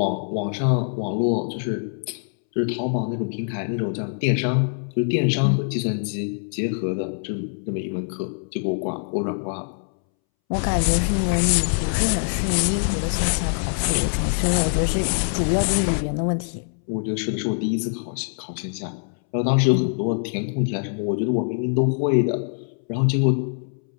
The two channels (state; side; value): silent; right; 63 dB below the other